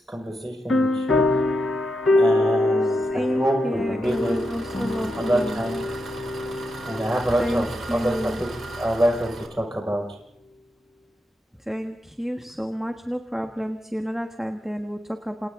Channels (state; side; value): normal; both; correlation 0.86